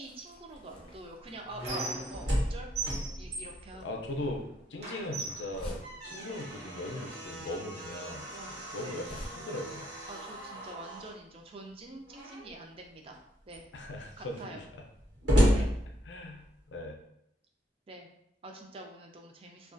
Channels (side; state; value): both; normal; correlation 0.72